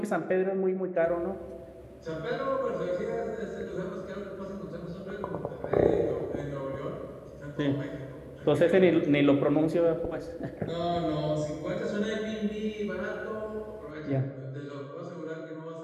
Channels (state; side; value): identical; both; correlation 1.00